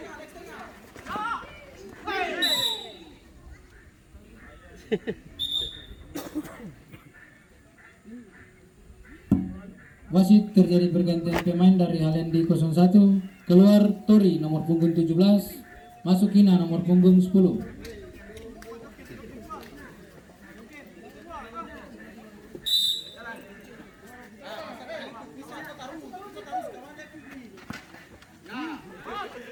Wasit terjadi pergantian pemain dari Halendi 01, keluar Tori nomor punggung 17, masuk Kina nomor punggung 10.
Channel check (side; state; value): both; identical; correlation 1.00